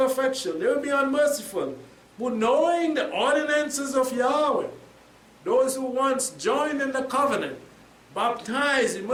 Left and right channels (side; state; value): both; identical; correlation 1.00